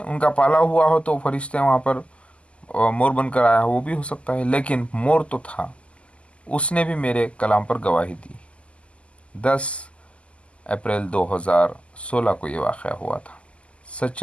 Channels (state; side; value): late; right; 0.057 ms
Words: उनका पाला हुआ हो तो फरिश्ते वहाँ पर मोर बनकर आया हो, वो भी हो सकता है, लेकिन मोर तो था। उसने भी मेरे कलाम पर गवाही दी। 10 अप्रैल 2016 को ये वाक़या हुआ था।